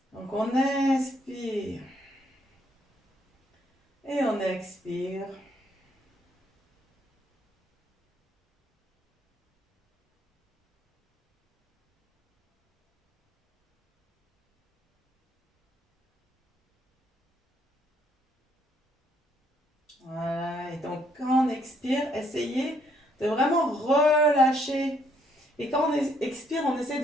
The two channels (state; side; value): normal; both; correlation 0.69